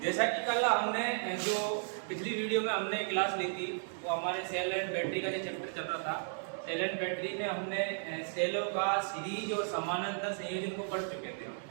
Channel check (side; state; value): left; silent; digital silence